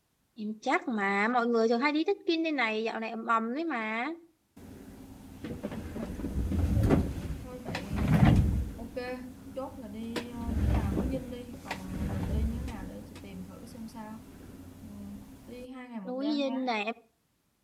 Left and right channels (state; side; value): identical; both; correlation 1.00